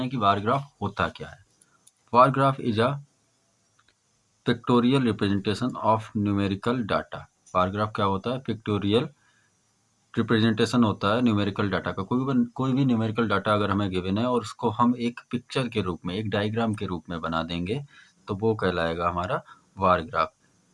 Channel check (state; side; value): identical; both; correlation 1.00